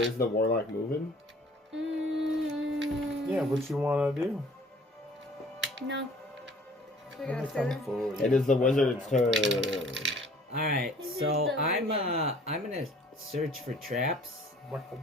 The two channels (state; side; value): normal; both; correlation 0.53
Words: the warlock moving? Yeah, what you want to do? No. It is the wizard's turn. Alright, so I'm gonna search for traps.